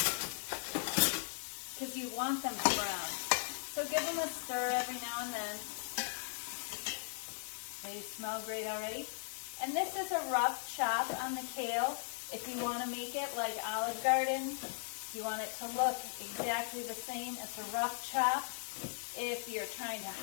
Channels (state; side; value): silent; right; digital silence